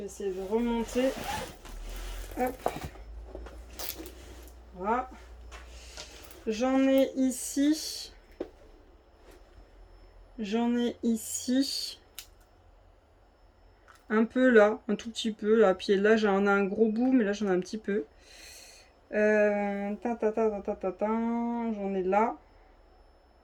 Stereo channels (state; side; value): identical; both; correlation 1.00